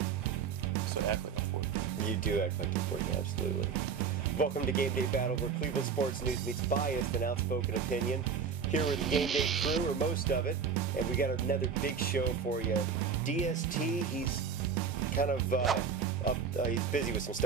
So I act like I'm 14. You do act like you're 14, absolutely. Welcome to Game Day Battle, where Cleveland sports news meets biased and outspoken opinion. Here with the Game Day crew, or most of it, and we got another big show for you. DST, he's kind of he's busy with some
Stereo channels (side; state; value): left; quieter; 6.2 dB